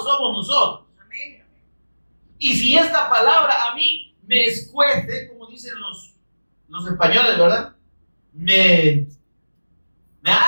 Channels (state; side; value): inverted; both; correlation -1.00